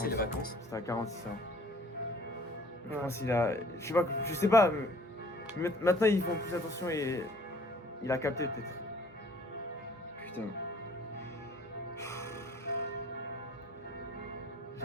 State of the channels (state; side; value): normal; both; correlation 0.54